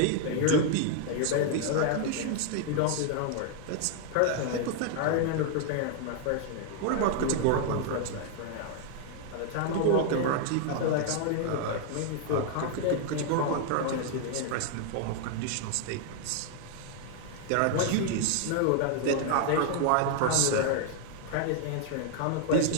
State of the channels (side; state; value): both; different; correlation 0.00